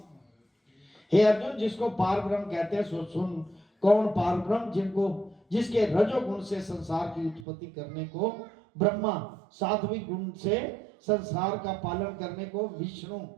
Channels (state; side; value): drops out; left; at 7.5 s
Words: हे अर्जुन, जिसको पार ब्रह्म कहते हैं सो सुन। कौन पार ब्रह्म? जिनको जिसके रजोगुण से संसार की उत्पत्ति करने को ब्रह्मा, सात्विक गुण से संसार का पालन करने को विष्णु,